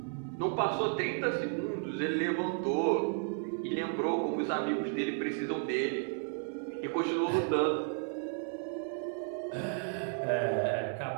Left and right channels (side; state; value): left; silent; 55 dB below the other